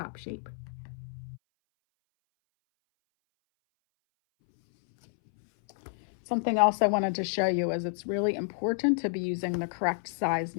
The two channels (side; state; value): right; silent; 58 dB below the other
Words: shape. Something else I wanted to show you is it's really important to be using the correct size